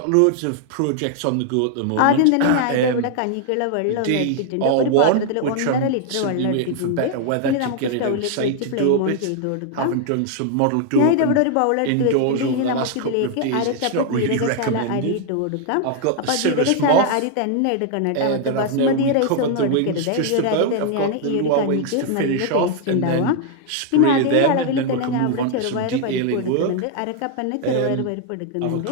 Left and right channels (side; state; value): both; different; correlation 0.00